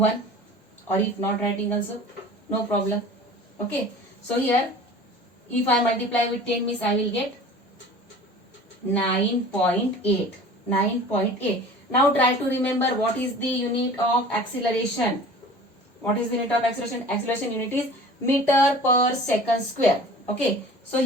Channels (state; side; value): normal; both; correlation 0.43